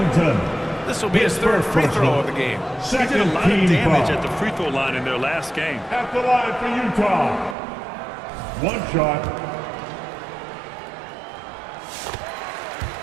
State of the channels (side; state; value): left; drops out; at 7.6 s